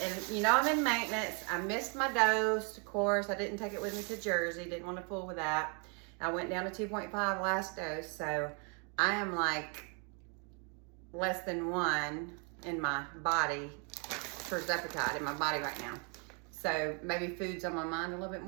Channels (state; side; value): quieter; left; 36.2 dB